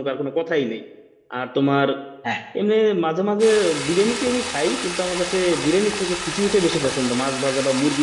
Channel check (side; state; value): both; identical; correlation 1.00